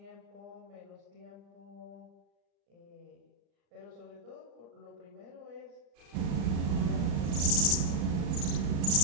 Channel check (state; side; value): late; left; 35 ms